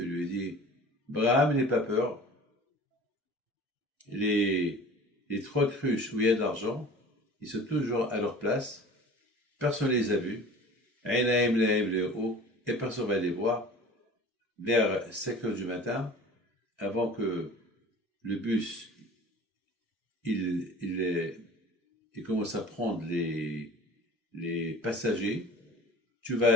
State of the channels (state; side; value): normal; both; correlation 0.42